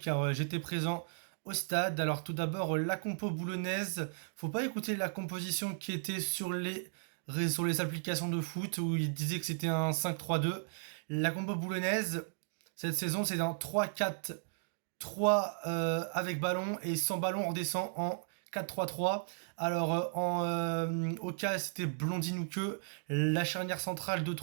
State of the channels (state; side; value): silent; left; digital silence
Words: j'étais présent au stade. Alors tout d'abord la compo boulonnaise, faut pas écouter la composition qui était sur les applications de foot où il disait que c'était un 5-3-2. La compo boulonnaise cette saison c'est un 3-4-3 avec ballon, et sans ballon on redescend en 4-3-3. Alors au cas c'était Blondin ou que. La charnière centrale de